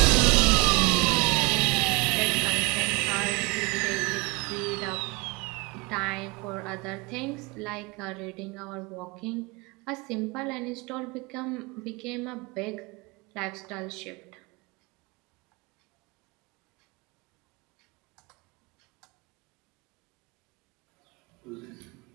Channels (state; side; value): quieter; left; 26.9 dB